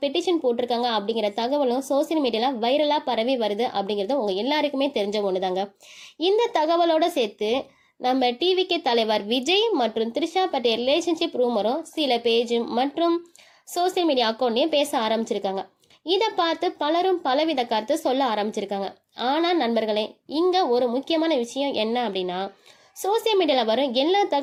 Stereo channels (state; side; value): identical; both; correlation 1.00